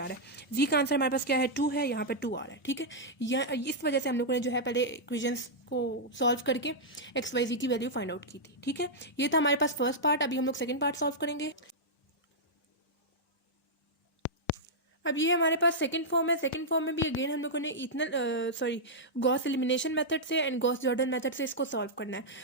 रहा है। z का आंसर हमारे पास क्या है, 2 है, यहाँ पे 2 आ रहा है। ठीक है, इस वजह से हम लोगों ने जो है पहले इक्वेशंस को सॉल्व करके एक्स वाई जी की वैल्यू फाइंड आउट की थी। ठीक है, ये था हमारे पास फर्स्ट पार्ट। अभी हम लोग सेकंड पार्ट सॉल्व करेंगे। अब ये हमारे पास सेकंड फॉर्म है। सेकंड फॉर्म में भी अगेन हम लोगों ने गॉस एलिमिनेशन मेथड से एंड गॉस जॉर्डन मेथड से इसको सॉल्व करना है।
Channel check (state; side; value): normal; both; correlation -0.07